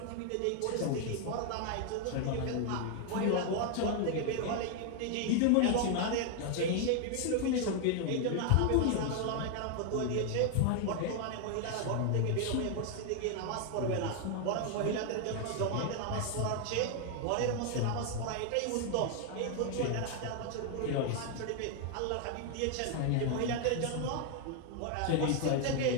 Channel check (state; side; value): different; both; correlation 0.00